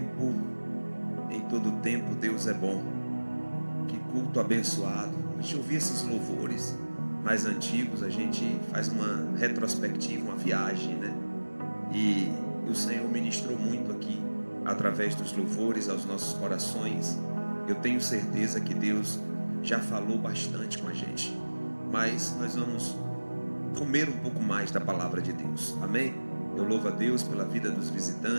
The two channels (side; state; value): both; inverted; correlation -1.00